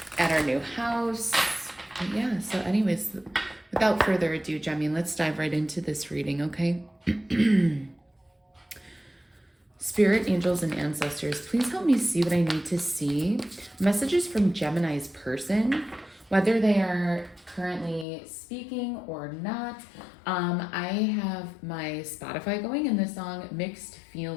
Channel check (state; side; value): drops out; right; at 18.1 s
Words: at our new house. Yeah, so anyways, without further ado, Gemmy, let's dive right into this reading, okay? Spirit, angels, and ancestors, please help me see what I need to see. Messages from Gemini's person, whether they are currently speaking or not. I have my Spotify going, and the song Mixed